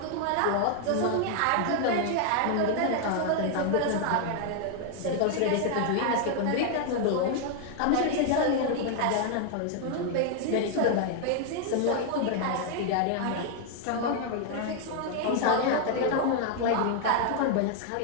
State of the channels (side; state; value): both; different; correlation 0.00